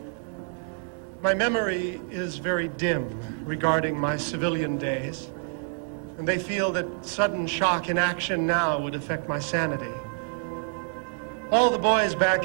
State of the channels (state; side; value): silent; left; 55 dB below the other